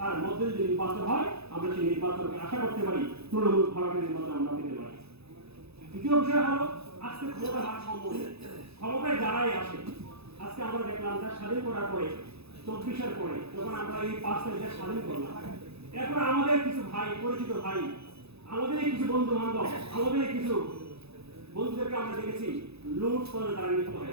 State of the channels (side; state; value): left; late; 0.79 ms